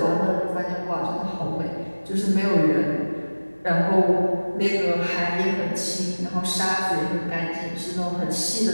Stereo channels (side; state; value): both; inverted; correlation -1.00